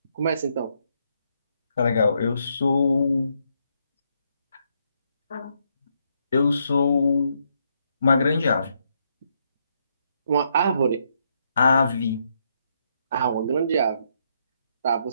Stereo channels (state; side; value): inverted; both; correlation -0.76